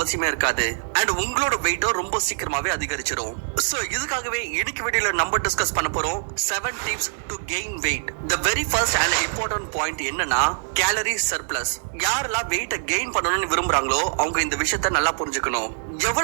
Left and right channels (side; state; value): left; silent; digital silence